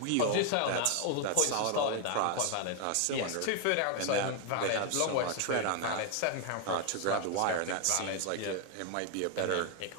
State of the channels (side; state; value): both; different; correlation 0.00